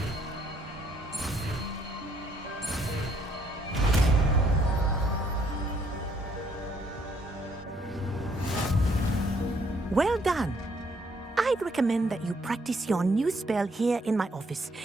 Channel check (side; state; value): both; normal; correlation 0.68